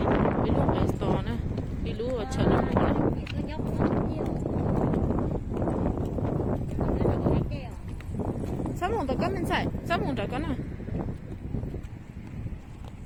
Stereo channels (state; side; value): identical; both; correlation 1.00